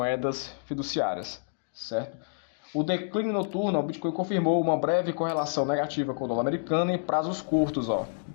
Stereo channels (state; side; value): silent; right; digital silence